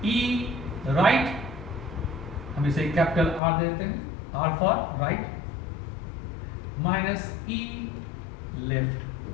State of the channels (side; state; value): right; drops out; at 3.4 s